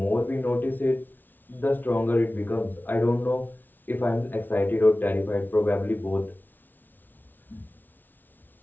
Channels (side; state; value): right; late; 0.087 ms